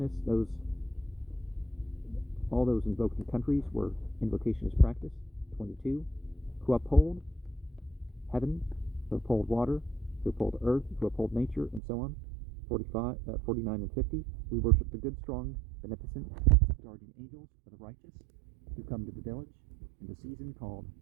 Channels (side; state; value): left; drops out; at 11.8 s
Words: all those invoked in countries where invocation is practiced. 22. Who uphold heaven, who uphold water, who uphold earth, who uphold nature, and so on. 49 and 50. We worship the good, strong, beneficent guardian angels of the righteous who come to the village in the season called